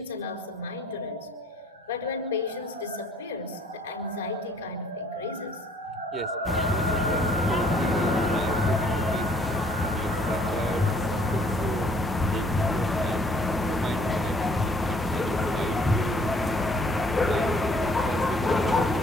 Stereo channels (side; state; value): both; normal; correlation 0.60